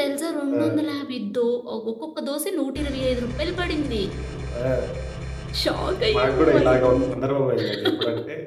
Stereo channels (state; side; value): identical; both; correlation 1.00